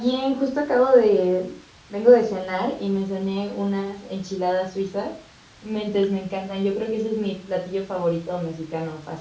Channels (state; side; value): identical; both; correlation 1.00